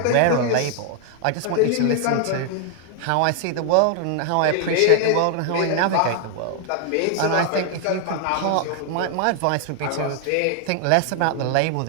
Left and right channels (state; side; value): different; both; correlation 0.00